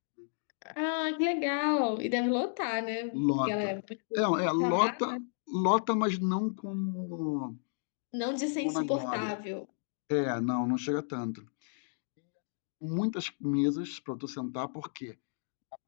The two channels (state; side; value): silent; right; digital silence